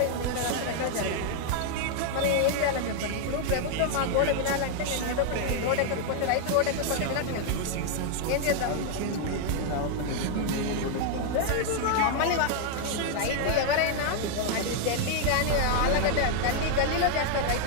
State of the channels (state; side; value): different; both; correlation 0.00